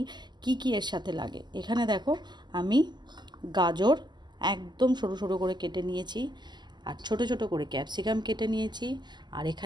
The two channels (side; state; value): left; late; 0.21 ms